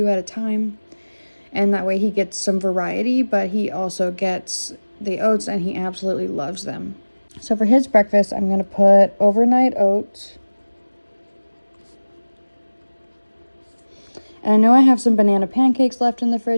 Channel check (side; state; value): both; inverted; correlation -1.00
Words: at a time, and that way he gets some variety, but he also gets the oats and he absolutely loves them. So for his breakfast, I'm going to put overnight oats. And I know I have some banana pancakes left in the